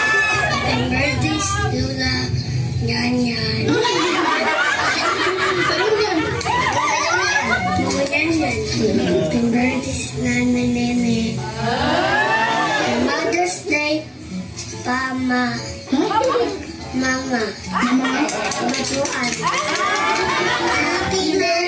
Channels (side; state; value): both; identical; correlation 1.00